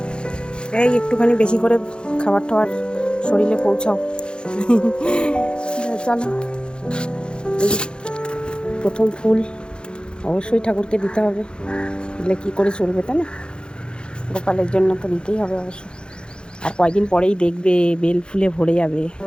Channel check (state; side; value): late; right; 0.051 ms